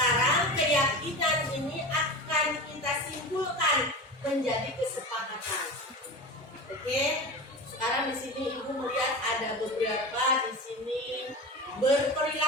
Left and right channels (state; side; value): normal; both; correlation 0.28